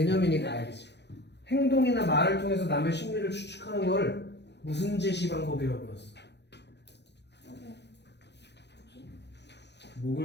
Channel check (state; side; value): late; right; 0.50 ms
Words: 알겠지. 행동이나 말을 통해서 남의 심리를 추측하는 걸 무슨 제시 방법이라고 불렀어?